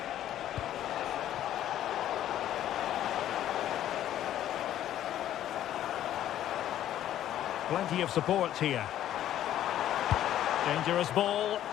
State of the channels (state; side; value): quieter; right; 12.0 dB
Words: Plenty of support here. Dangerous ball.